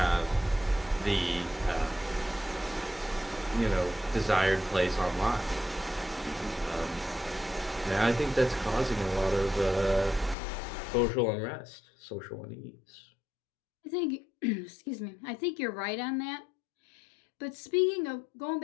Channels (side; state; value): right; drops out; at 10.4 s